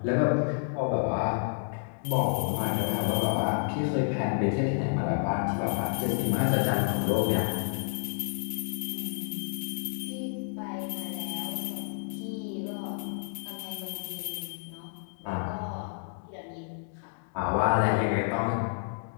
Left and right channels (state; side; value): silent; right; digital silence